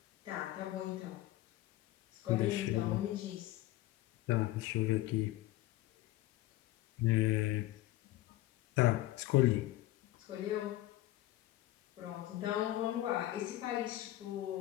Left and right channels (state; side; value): quieter; right; 16.0 dB